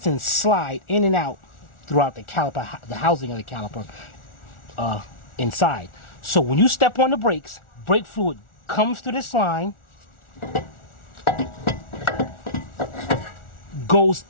slide in and out throughout the caliper, the housing of the caliper inside. So when you step on the brakes, brake fluid comes through this line, goes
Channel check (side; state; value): right; late; 1.4 ms